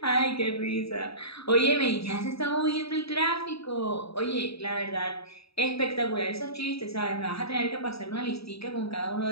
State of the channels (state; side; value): late; right; 0.77 ms